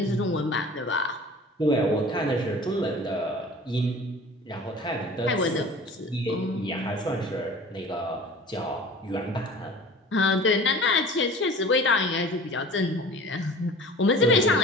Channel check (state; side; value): normal; both; correlation 0.42